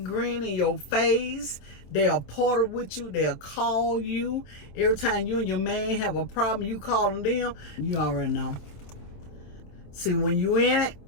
grin in your face. They'll porter with you. They'll call you. Every time you and your man have a problem, you calling them. You already know. See, when you in it,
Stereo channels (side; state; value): right; late; 27 ms